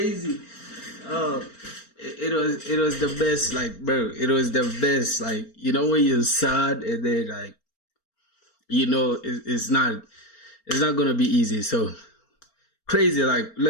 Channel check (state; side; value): late; right; 4.4 ms